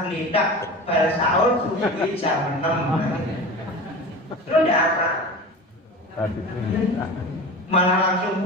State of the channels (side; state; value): both; normal; correlation 0.32